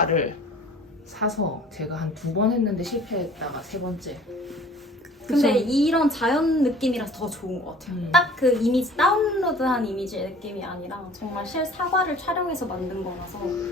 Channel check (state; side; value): normal; both; correlation 0.49